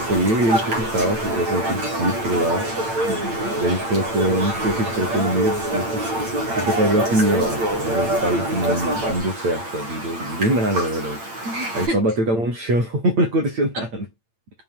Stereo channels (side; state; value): left; late; 8.8 ms